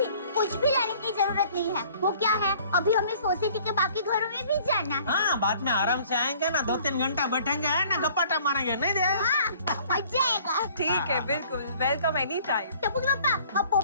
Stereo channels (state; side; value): inverted; both; correlation -0.54